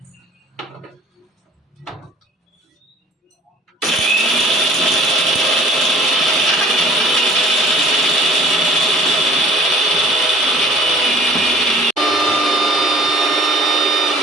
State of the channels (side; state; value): both; normal; correlation 0.51